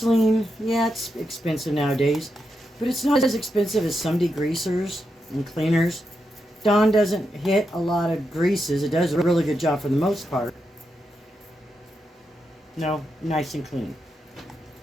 yeah, it's expensive nowadays, but it's not as expensive as some degreasers and cleaners. Dawn doesn't hit a lot of greases. It does a really good job for the most part. No, nice and clean.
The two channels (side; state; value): both; normal; correlation 0.85